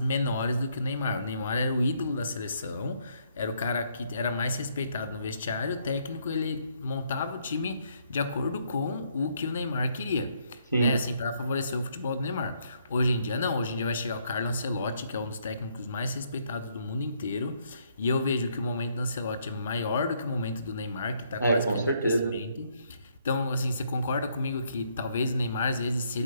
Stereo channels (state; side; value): inverted; both; correlation -0.71